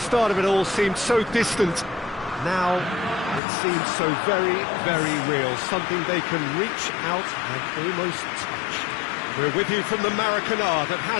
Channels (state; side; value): drops out; right; at 3.4 s